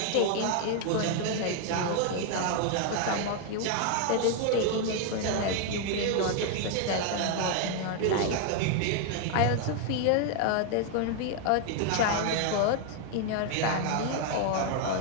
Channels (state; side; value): different; both; correlation 0.00